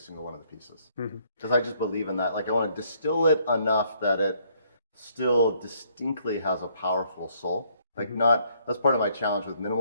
one of the pieces. Because I just believe in that. Like, I want to distill it enough that it still distinctly has a powerful soul. Like, that's part of my challenge with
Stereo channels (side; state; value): both; inverted; correlation -0.67